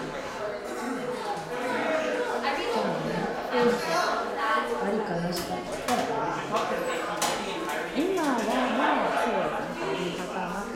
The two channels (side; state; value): both; identical; correlation 1.00